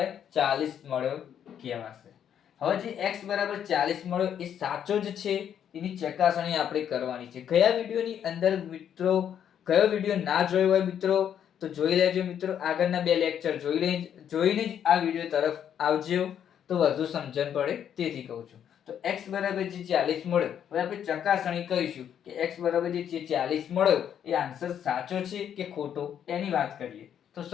40 મળ્યો કહેવાશે. હવે જે x બરાબર 40 મળ્યો એ સાચો જ છે એની ચકાસણી આપણે કરવાની છે. કયા વિડિયોની અંદર મિત્રો, કયો વિડિયો ના જોયો હોય મિત્રો તો જોઈ લેજો મિત્રો. આગળના 2 લેક્ચર જોઈને જ આ વિડિયો તરફ આવજો તો વધુ સમજણ પડે, તેથી કહું છું. તો x બરાબર જે 40 મળ્યો, હવે આપણે ચકાસણી કરીશું કે x બરાબર જે 40 મળ્યો એ આન્સર સાચો છે કે ખોટો, એની વાત કરીએ. તો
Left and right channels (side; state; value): right; quieter; 9.2 dB